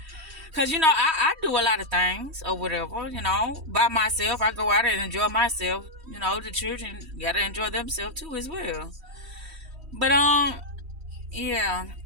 Because, I do a lot of things or whatever, by myself. I go out and enjoy myself. The children got to enjoy themselves too as well. But, yeah.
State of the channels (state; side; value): late; left; 3.1 ms